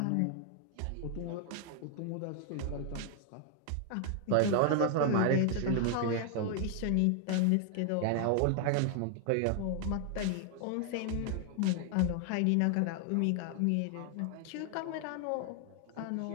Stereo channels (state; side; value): different; both; correlation 0.00